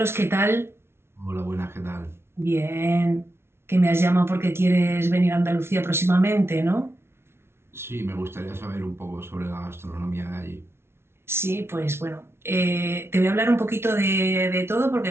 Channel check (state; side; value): late; left; 0.12 ms